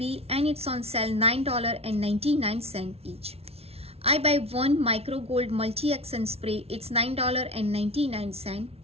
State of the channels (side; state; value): left; late; 0.30 ms